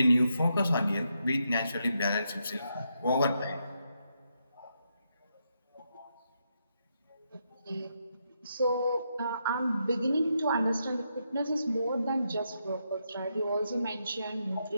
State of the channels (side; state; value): both; inverted; correlation -0.81